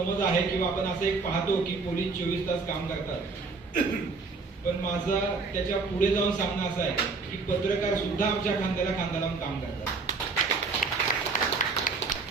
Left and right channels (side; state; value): left; quieter; 4.3 dB